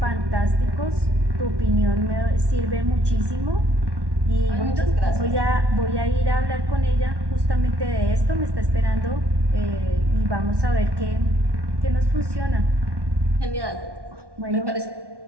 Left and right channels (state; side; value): late; left; 1.1 ms